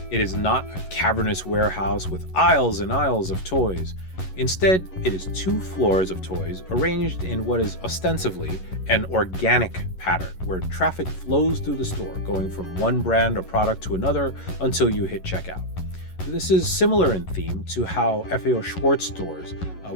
It is not a cavernous warehouse with aisles and aisles of toys. Instead, it is two floors of toys arranged in what is ostensibly an organic pattern where traffic flows through the store, going from one brand or product to another until you hit checkout. This is similar in theme to how FAO Schwartz stores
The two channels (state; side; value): late; right; 11 ms